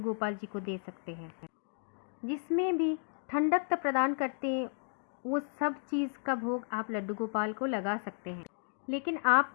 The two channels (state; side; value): silent; right; 55 dB below the other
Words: गोपाल जी को दे सकते हैं। जिसमें भी ठंडक प्रदान करते हैं वो सब चीज़ का भोग आप लड्डू गोपाल को लगा सकते हैं। लेकिन